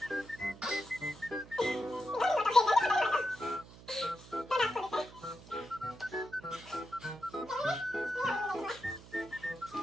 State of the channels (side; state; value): right; noise; hum, 19 dB below the sound